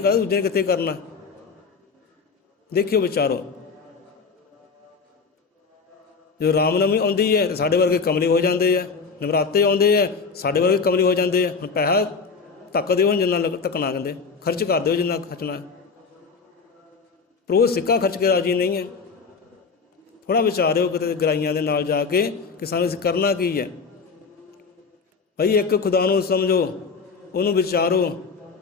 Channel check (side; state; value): right; quieter; 5.0 dB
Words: ਦੂਜੇ ਨੇ ਕਿੱਥੇ ਕਰਨਾ? ਦੇਖਿਓ, ਵਿਚਾਰੋ। ਜਦੋਂ ਰਾਮਨਵਮੀ ਆਉਂਦੀ ਹੈ ਤਾਂ ਸਾਡੇ ਵਰਗੇ ਕਮਲੇ ਹੋ ਜਾਂਦੇ ਆ, ਨਵਰਾਤੇ ਆਉਂਦੇ ਆ ਸਾਡੇ ਵਰਗੇ ਕਮਲੇ ਹੋ ਜਾਂਦੇ ਆ। ਹੁਣ ਪੈਸਾ ਧੱਕ ਦਿਓ, ਜਿੰਨਾ ਧੱਕਣਾ, ਕਹਿੰਦੇ ਖਰਚ ਕਰ ਦਿਓ ਜਿੰਨਾ ਖਰਚਣਾ। ਪਰ ਉਹ ਸਿੱਕਾ ਖਰਚ ਕੇ ਰਾਜੀ ਨਹੀਂ ਹੈ। ਥੋੜ੍ਹਾ ਵਿਚਾਰਿਓ ਕਿਤੇ ਗਰਾਈਆਂ ਦੇ ਨਾਲ ਜਾ ਕੇ ਕਿ ਸਾਨੂੰ ਅਸੀਂ ਕਰਨਾ ਕੀ ਹੈ। ਭਾਈ ਇੱਕ ਖੁਦਾ ਨੂੰ ਸਮਝੋ, ਉਹਨੂੰ ਵਿਚਾਰੋ,